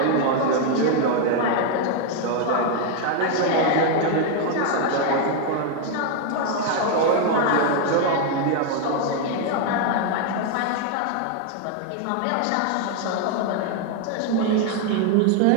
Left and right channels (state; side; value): different; both; correlation 0.01